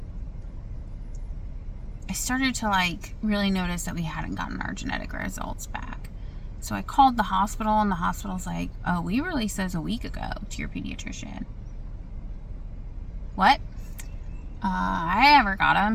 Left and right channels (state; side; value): identical; both; correlation 1.00